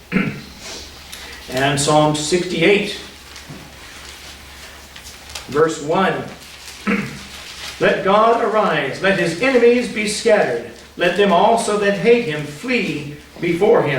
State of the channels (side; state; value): both; identical; correlation 1.00